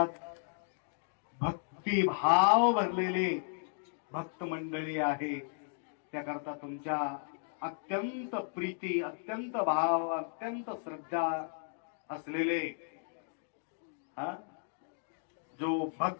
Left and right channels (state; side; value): silent; right; digital silence